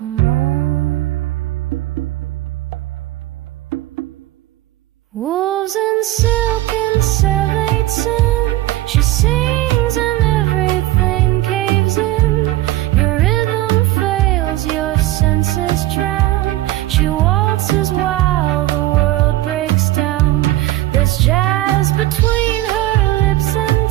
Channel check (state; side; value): quieter; left; 16.7 dB